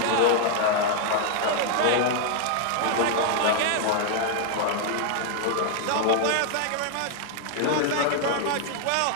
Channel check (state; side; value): different; both; correlation 0.00